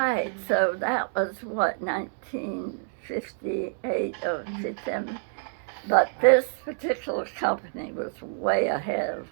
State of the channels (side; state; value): left; silent; digital silence